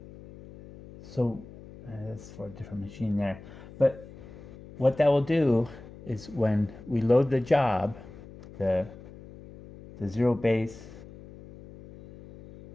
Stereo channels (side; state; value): left; noise; hum, 17 dB below the sound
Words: So that's for a different machine there. But what that will do is when we load the job, the zero base